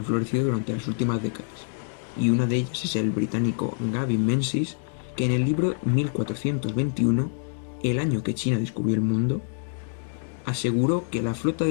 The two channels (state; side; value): silent; right; digital silence